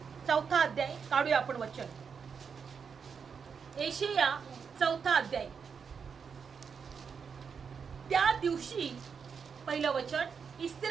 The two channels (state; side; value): quieter; left; 6.2 dB